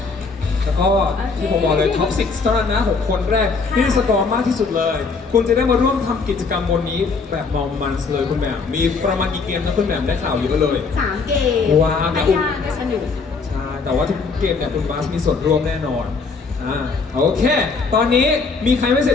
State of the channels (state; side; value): quieter; right; 4.6 dB